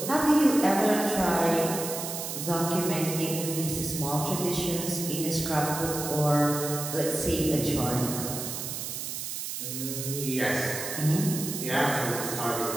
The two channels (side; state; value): right; noise; hiss, 5 dB below the sound